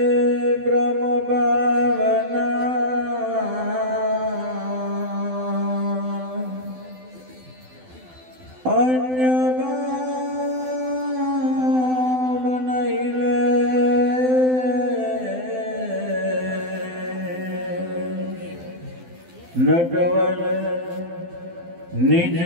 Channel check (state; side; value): late; left; 12 ms